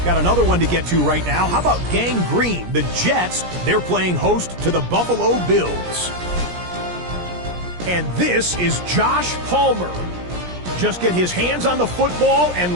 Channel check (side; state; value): left; late; 17 ms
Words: Got another one to get to right now. How about Gang Green? The Jets, they're playing host to the Buffalo Bills. And this is Josh Palmer. Just get his hands on the football